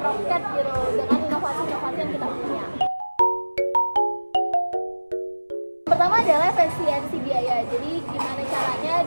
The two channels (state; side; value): inverted; both; correlation -1.00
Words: gitu dengan inovasi-inovasi yang kita punya. Pertama adalah efisiensi biaya. Jadi gimana caranya